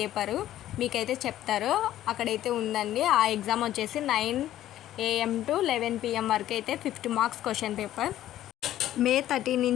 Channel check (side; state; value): right; quieter; 13.0 dB